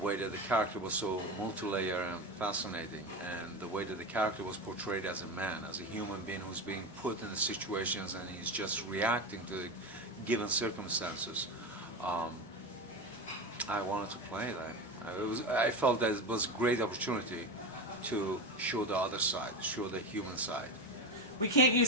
that the character was so multi-layered and fascinating, and the way that the character was portrayed as a man, as a human being who's being put in the situations and he's just reacting to the given circumstances. I wanted to play that. I felt that it was a great opportunity to show the other side, show the human side. We can't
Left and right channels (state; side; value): normal; both; correlation 0.20